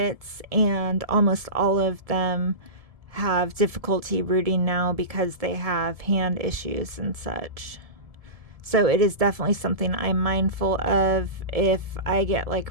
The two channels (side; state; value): left; late; 1.7 ms